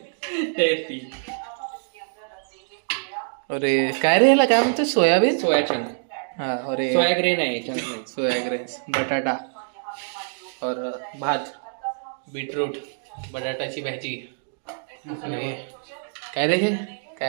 तैरती. अरे काय रे याला काय म्हणतो? सोयाबीन. सोया चंक. हाँ और सोया ग्रेन आहे चंक. सोया ग्रेन्स, बटाटा और भात, बीटरूट, बटाटाची भाजी आणि काय रे हे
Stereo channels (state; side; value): silent; left; digital silence